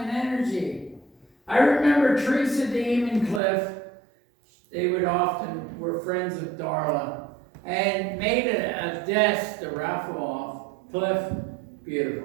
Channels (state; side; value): drops out; left; at 3.4 s